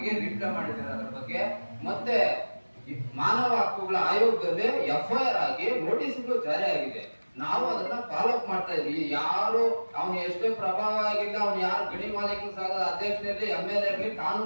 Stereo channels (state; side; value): inverted; both; correlation -1.00